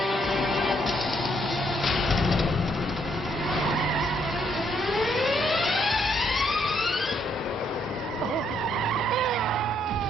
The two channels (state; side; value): normal; both; correlation 0.71